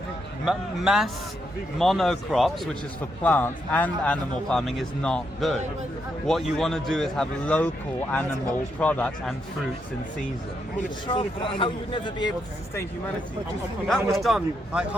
Mass monocrops, which is for plants, and animal farming is not good. What you want to do is have local animal products and fruits in season. How you would never be able to sustain humanity. That was done like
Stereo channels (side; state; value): both; normal; correlation 0.80